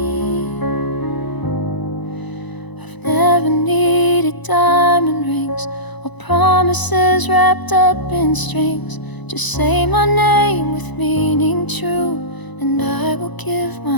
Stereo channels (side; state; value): right; late; 1.0 ms